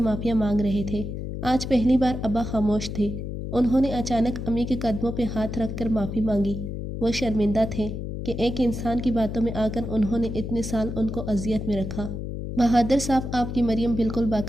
معافیاں مانگ رہے تھے۔ آج پہلی بار ابا خاموش تھے۔ انہوں نے اچانک امی کے قدموں پہ ہاتھ رکھ کر معافی مانگی۔ وہ شرمندہ تھے کہ ایک انسان کی باتوں میں آ کر انہوں نے اتنے سال ان کو اذیت میں رکھا۔ بہادر صاحب، آپ کی مریم بالکل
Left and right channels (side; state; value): left; noise; hum, 6 dB below the sound